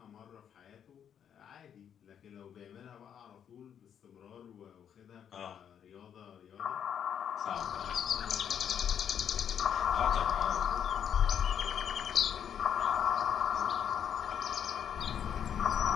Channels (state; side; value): quieter; right; 8.7 dB